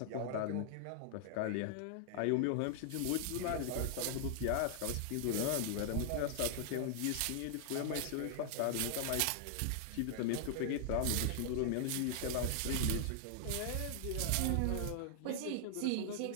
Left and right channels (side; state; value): both; different; correlation -0.01